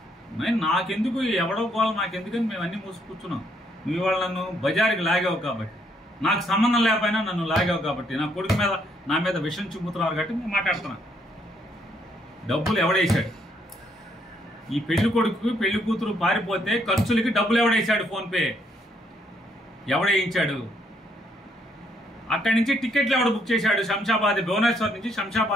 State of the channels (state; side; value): normal; both; correlation 0.71